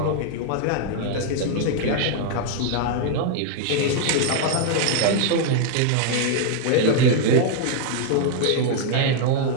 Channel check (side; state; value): both; different; correlation 0.00